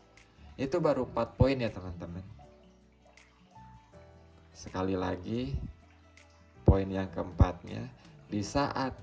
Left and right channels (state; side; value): identical; both; correlation 1.00